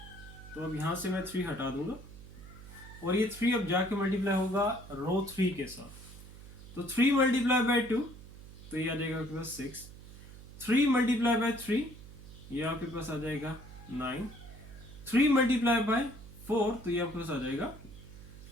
तो अब यहां से मैं 3 हटा दूंगा और ये 3 अब जाके मल्टीप्लाई होगा रो 3 के साथ। तो 3 मल्टीप्लाई बाय 2, तो ये आ जाएगा आपके पास 6, 3 मल्टीप्लाई बाय 3, ये आपके पास आ जाएगा 9, 3 मल्टीप्लाई बाय 4, तो ये आपके पास आ जाएगा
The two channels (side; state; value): right; noise; hum, 16 dB below the sound